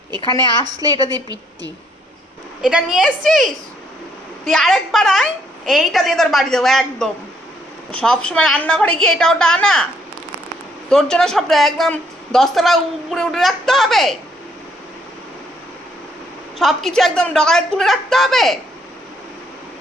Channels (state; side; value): normal; both; correlation 0.69